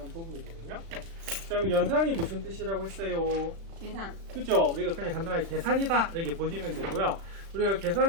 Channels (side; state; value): left; late; 36 ms